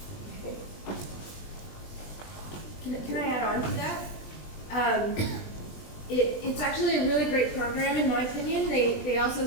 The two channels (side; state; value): right; late; 20 ms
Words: Can I add on to that? It's actually a really great program in my opinion. They also